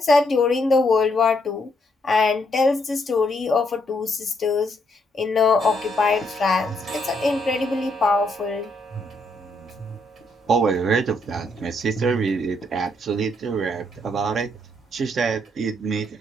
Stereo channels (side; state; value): both; normal; correlation 0.74